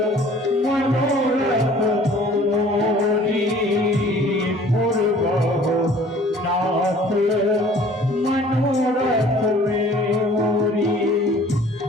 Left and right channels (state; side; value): normal; both; correlation 0.52